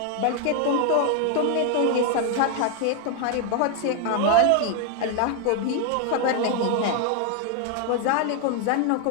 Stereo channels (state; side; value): different; both; correlation 0.01